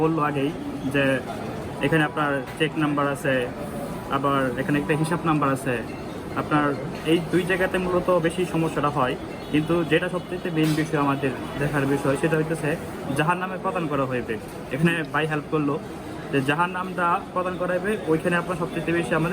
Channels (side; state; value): both; identical; correlation 1.00